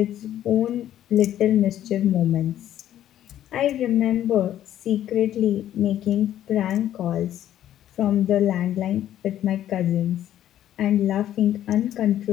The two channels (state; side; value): quieter; right; 11.7 dB